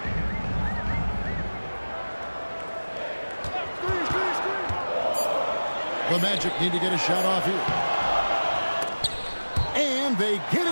The Magic need to get a shot off here. And they get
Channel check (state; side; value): inverted; both; correlation -1.00